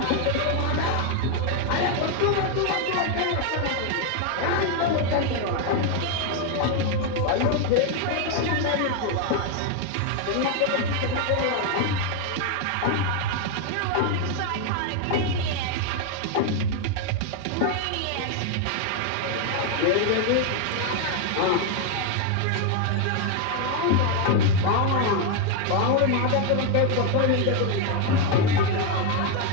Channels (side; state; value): both; different; correlation 0.01